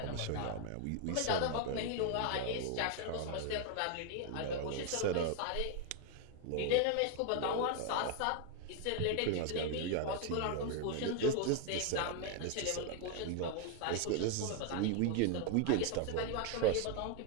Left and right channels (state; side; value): different; both; correlation 0.01